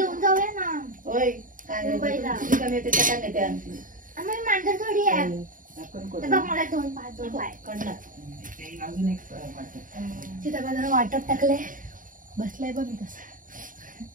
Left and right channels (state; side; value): late; left; 0.39 ms